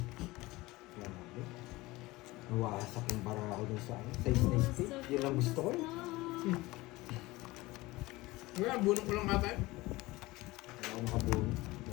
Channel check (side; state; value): right; quieter; 20.4 dB